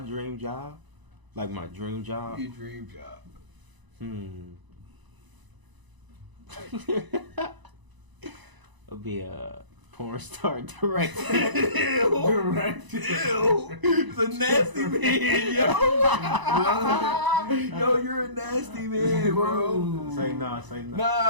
job? Like my dream job? Your dream job. It'll be a porn star director. Director. It's a nasty man, yo. Yo, you're a nasty man, bro. Say no.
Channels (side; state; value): left; late; 1.0 ms